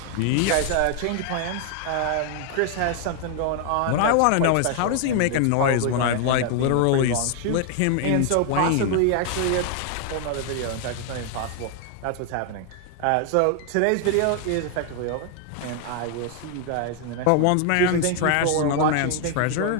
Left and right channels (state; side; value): different; both; correlation 0.00